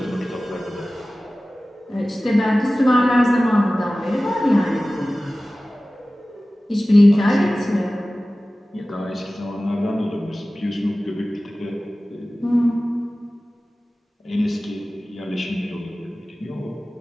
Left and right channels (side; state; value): both; normal; correlation 0.97